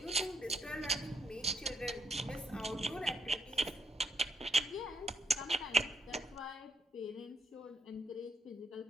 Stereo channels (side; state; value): both; normal; correlation 0.76